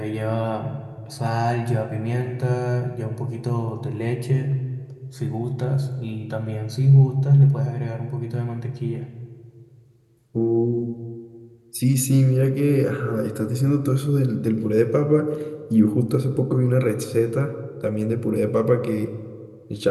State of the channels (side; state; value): both; identical; correlation 1.00